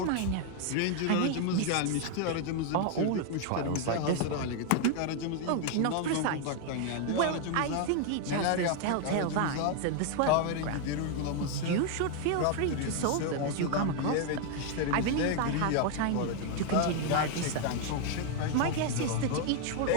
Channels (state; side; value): different; both; correlation 0.00